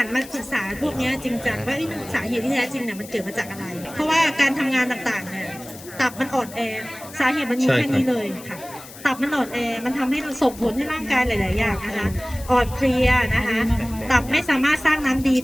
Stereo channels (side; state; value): left; noise; hiss, 17 dB below the sound